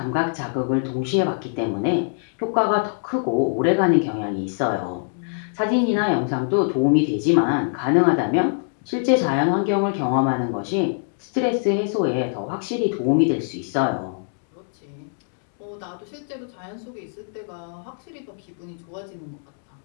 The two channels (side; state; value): right; silent; 63 dB below the other